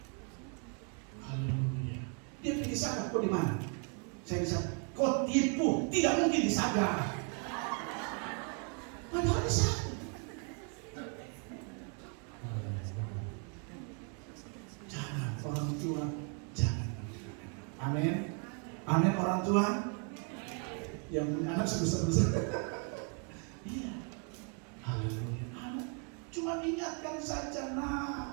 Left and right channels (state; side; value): quieter; left; 39.9 dB